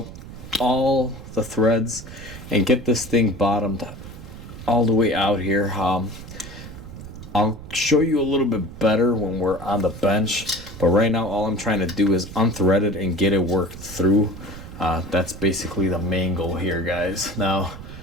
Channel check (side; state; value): right; noise; rumble, 13 dB below the sound